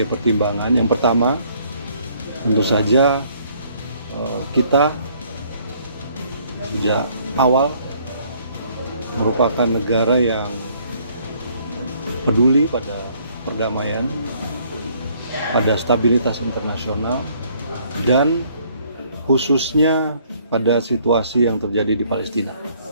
pertimbangan. Yang pertama, tentu saja kita sejak awal merupakan negara yang peduli pada perdamaian, pada stabilitas internasional, dan khususnya pada situasi yang terjadi di Palestina.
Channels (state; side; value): inverted; both; correlation -0.63